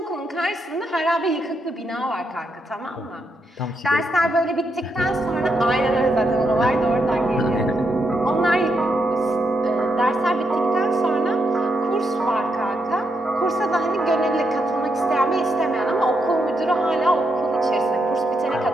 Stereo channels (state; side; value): normal; both; correlation 0.81